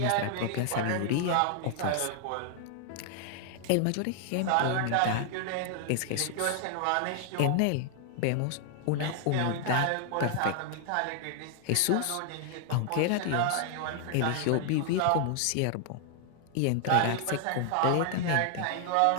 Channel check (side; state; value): both; different; correlation 0.00